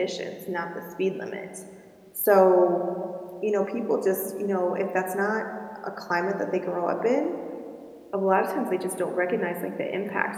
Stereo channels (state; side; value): identical; both; correlation 1.00